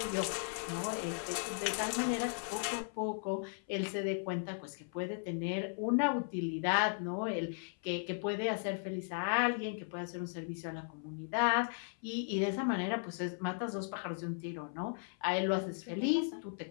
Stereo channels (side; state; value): right; silent; 53 dB below the other